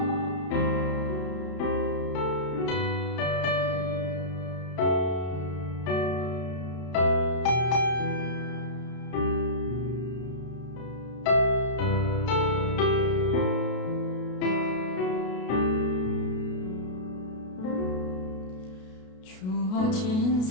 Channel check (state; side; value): late; right; 33 ms